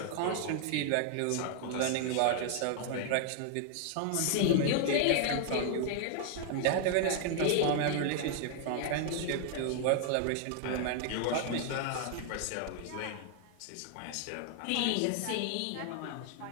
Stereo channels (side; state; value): both; different; correlation 0.00